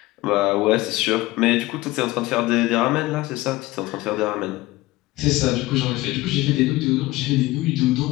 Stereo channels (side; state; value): right; quieter; 19.0 dB